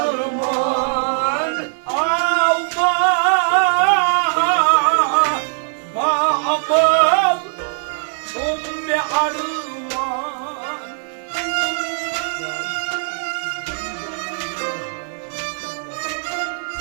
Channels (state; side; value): silent; left; digital silence